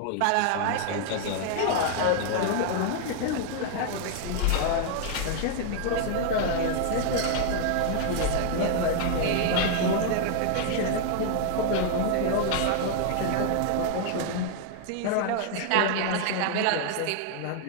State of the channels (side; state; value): both; different; correlation 0.00